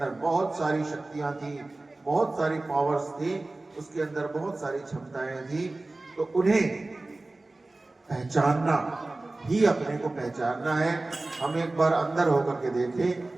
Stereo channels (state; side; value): quieter; left; 3.0 dB